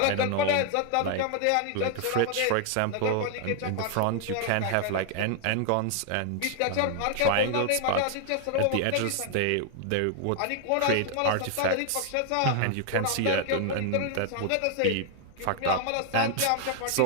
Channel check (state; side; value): different; both; correlation 0.00